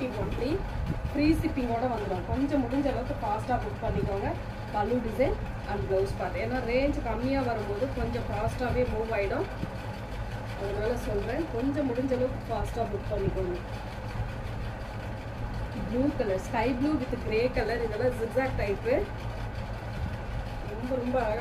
ஒன்லி, ஃப்ரீ ஷிப்பிங்கோட வந்துடும். கொஞ்சம் முடிஞ்ச அளவுக்கு ஃபாஸ்ட்டாக புக் பண்ணிக்கோங்க. பல்லு டிசைன் அண்ட் ப்ளவுஸ் பார்ட். ஏன்னா ரேஞ்ச் கம்மியாக வரும்போது கொஞ்சம் ஃபாஸ்ட்டாகவே மூவ் ஆகிடும். அதனால சொல்கிறேன், கொஞ்சம் முடிஞ்ச அளவுக்கு ஃபாஸ்ட்டாக புக் பண்ணிக்கோங்க. Blue colour, sky blue with grey colour, இதெல்லாம் ஜிக்ஸாக் டைப்பு. ரொம்ப ரொம்ப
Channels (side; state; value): both; identical; correlation 1.00